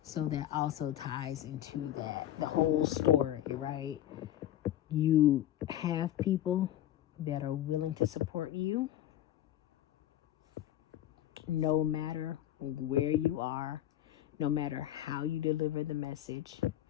So that also ties into that, the whole story, right? You have people that are willing to support you no matter where you are, no matter how you deliver the message.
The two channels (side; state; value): right; quieter; 12.6 dB